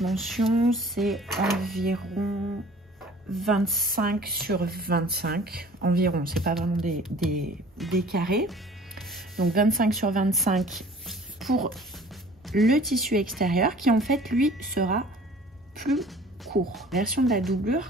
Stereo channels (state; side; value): normal; both; correlation 0.49